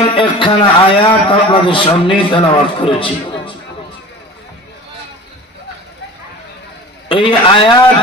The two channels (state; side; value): normal; both; correlation 0.39